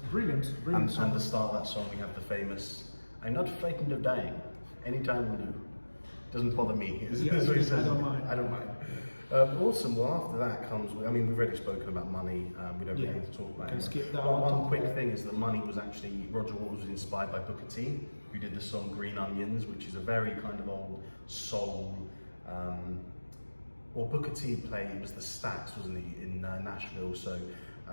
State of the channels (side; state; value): both; inverted; correlation -1.00